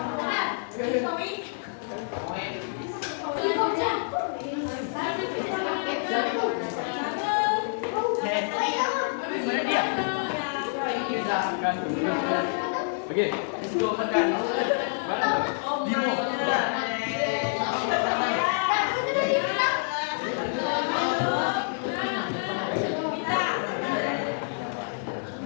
Oke, dua makan.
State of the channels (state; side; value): silent; right; digital silence